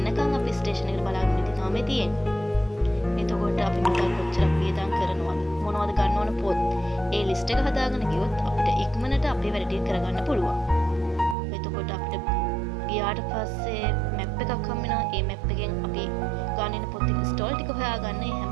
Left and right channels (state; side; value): drops out; left; at 11.4 s